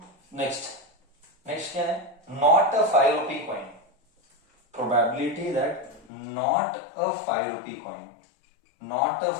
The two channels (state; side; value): drops out; right; at 6.1 s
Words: नेक्स्ट क्या है? Not a 5 rupee coin, probability that not a 5 rupee coin, not a